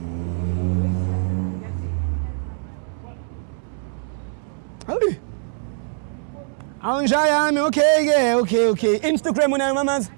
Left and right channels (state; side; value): silent; left; 64 dB below the other